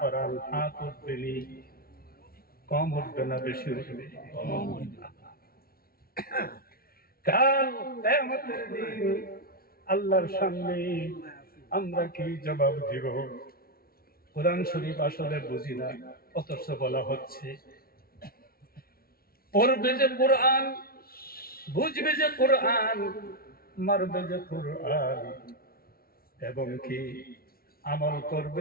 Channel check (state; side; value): late; right; 0.44 ms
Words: হাত উঠবেনি। কম উঠবে না বেশি উঠবে? কাল কিয়ামতের দিন আল্লাহর সামনে আমরা কি জবাব দিব? কোরআন শরীফ আসলে বুঝি না, অথচ বলা হচ্ছে পড়বে যে কোরআন, বুঝবে যে কোরআন, মারবে যে কোরআন, এবং কি আমল